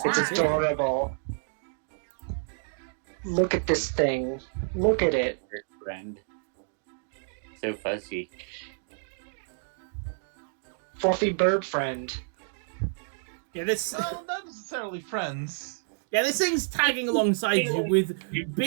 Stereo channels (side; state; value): left; silent; digital silence